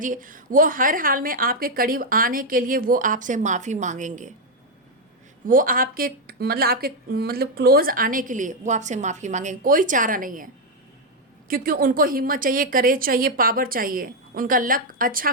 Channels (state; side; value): normal; both; correlation 0.02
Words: वो हर हाल में आपके करीब आने के लिए वो आपसे माफ़ी मांगेंगे। वो आपके मतलब क्लोज आने के लिए वो आपसे माफ़ी मांगेंगे। कोई चारा नहीं है, क्योंकि उनको हिम्मत चाहिए, करेज चाहिए, पावर चाहिए, उनका लक अच्छा